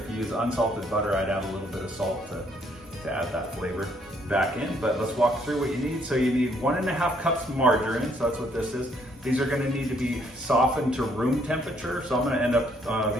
you use unsalted butter, I'd add a little bit of salt to add that flavor back in. But let's walk through what you need. So you need 1.5 cups margarine, so that's what this is. These are gonna need to be softened to room temperature. So I'm gonna end up,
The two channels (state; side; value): normal; both; correlation 0.68